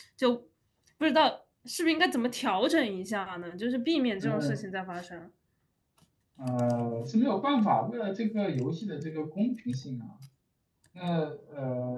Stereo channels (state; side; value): identical; both; correlation 1.00